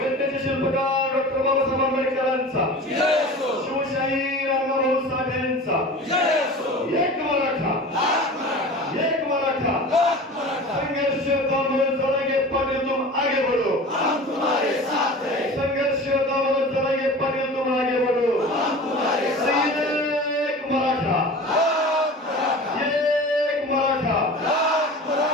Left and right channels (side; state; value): both; normal; correlation 0.37